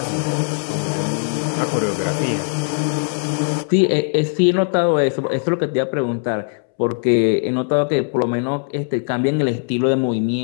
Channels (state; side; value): silent; right; 66 dB below the other